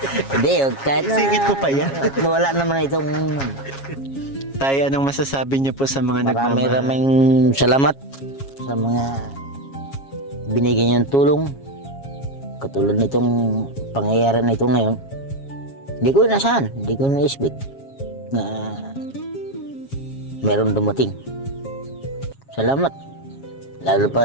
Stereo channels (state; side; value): late; right; 7.3 ms